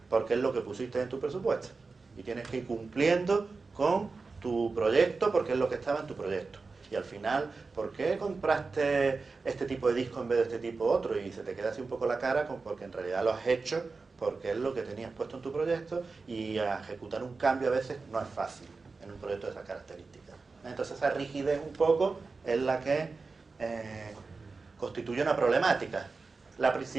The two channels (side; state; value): left; quieter; 4.2 dB